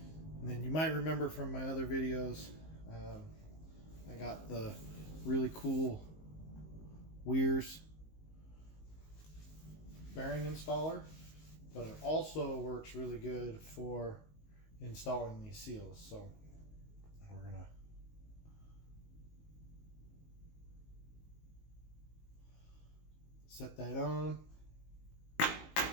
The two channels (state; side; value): late; right; 19 ms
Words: then you might remember from my other videos, I got the really cool Weir's bearing installer, but it also works really good for installing these seals. So we're gonna set that on.